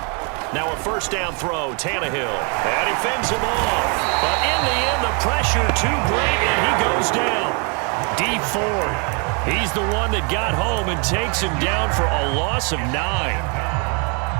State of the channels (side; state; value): left; quieter; 35.5 dB